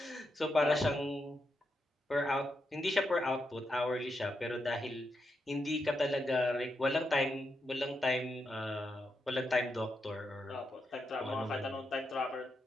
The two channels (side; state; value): both; normal; correlation 0.84